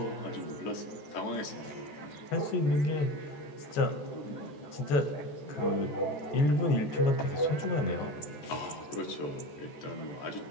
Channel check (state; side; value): late; right; 14 ms